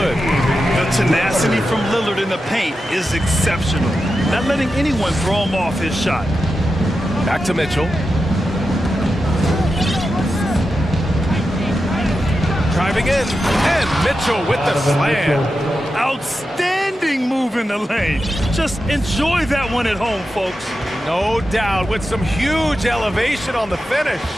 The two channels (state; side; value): normal; both; correlation 0.90